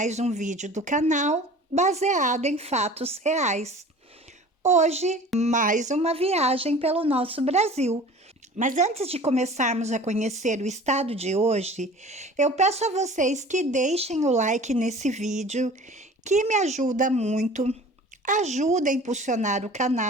um vídeo do canal baseado em fatos reais. Hoje, mais uma viagem pelo nosso Brasil. Mas antes de começarmos a conhecer o estado de hoje, eu peço a vocês que deixem o like nesse vídeo, que me ajuda muito, ajuda a impulsionar o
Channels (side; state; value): both; normal; correlation 0.43